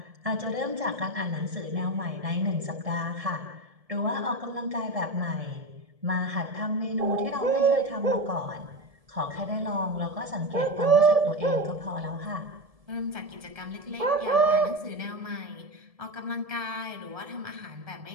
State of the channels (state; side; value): late; left; 1.7 ms